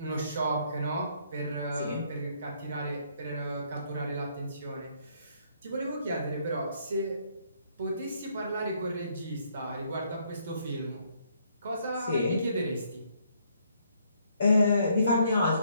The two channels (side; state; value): both; inverted; correlation -0.69